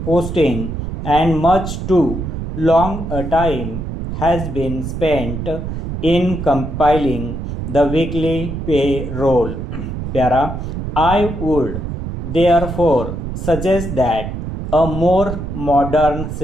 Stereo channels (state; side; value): noise; right; rumble, 5 dB below the sound